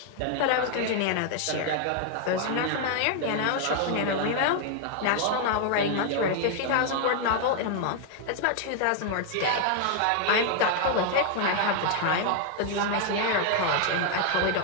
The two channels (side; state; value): both; different; correlation 0.00